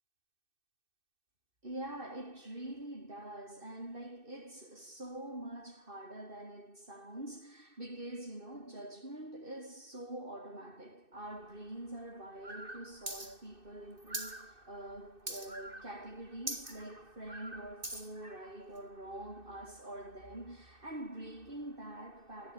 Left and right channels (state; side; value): late; left; 2.6 ms